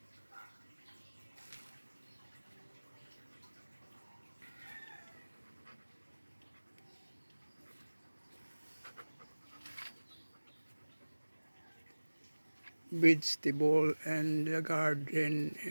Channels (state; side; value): inverted; both; correlation -1.00